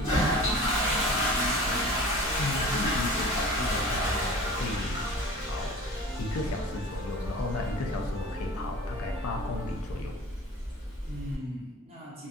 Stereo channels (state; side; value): normal; both; correlation 0.41